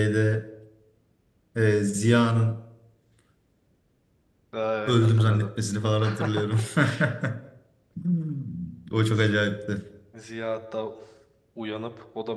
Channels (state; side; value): identical; both; correlation 1.00